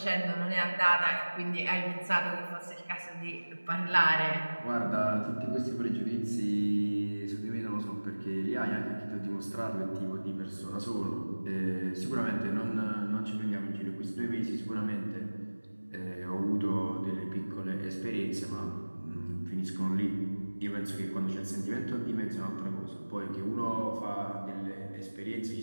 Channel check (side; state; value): both; inverted; correlation -1.00